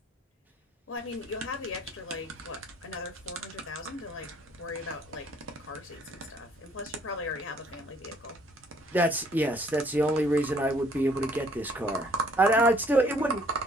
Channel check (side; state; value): both; normal; correlation 0.61